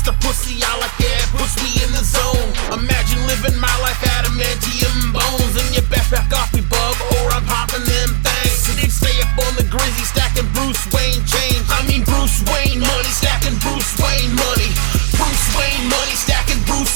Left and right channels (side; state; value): left; silent; digital silence